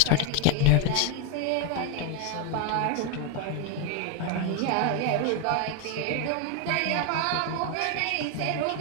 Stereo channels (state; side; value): different; both; correlation 0.01